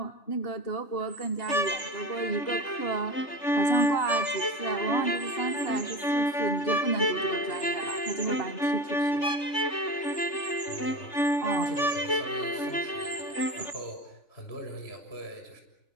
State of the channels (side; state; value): right; late; 3.3 ms